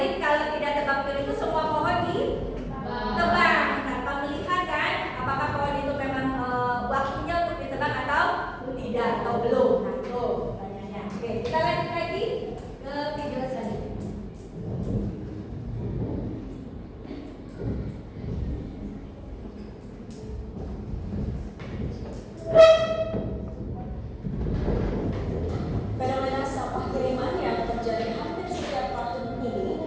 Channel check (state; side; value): identical; both; correlation 1.00